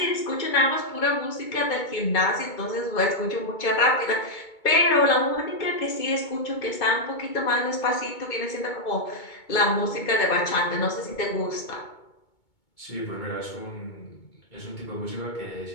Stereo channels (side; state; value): right; late; 2.2 ms